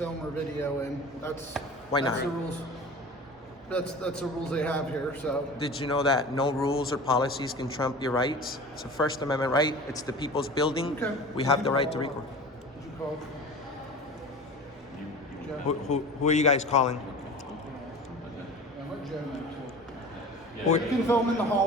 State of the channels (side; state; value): both; normal; correlation 0.37